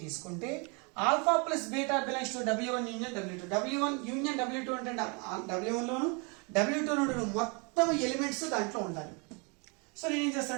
తీసుకుంటే alpha plus beta belongs to W1 union W2. W1 union W2 అంటే W1 లోను W2 నుండి మొత్తం ఎలిమెంట్స్ దాంట్లో ఉండాలి. సో నేను ఏం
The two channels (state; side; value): quieter; left; 32.6 dB